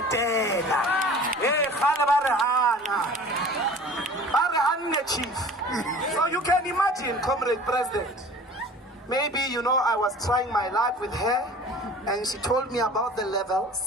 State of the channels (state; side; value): normal; both; correlation 0.43